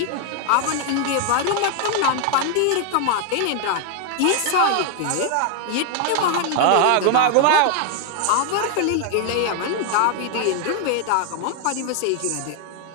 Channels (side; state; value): both; different; correlation 0.00